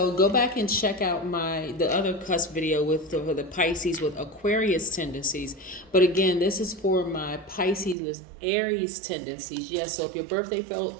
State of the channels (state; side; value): drops out; left; at 8.0 s